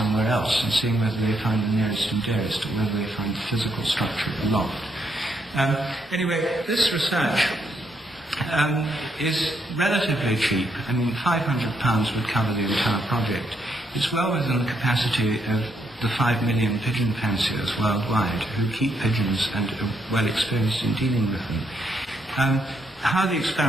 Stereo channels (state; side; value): normal; both; correlation 0.76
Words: else and seeing whether they find the nearest and dearest or whether they find the physical structure of the loft. Anyway, this research is relatively cheap. I mean, £500 would cover the entire project. It's well within the capacity of the 5 million pigeon fanciers worldwide who keep pigeons and are well experienced in dealing with them. How the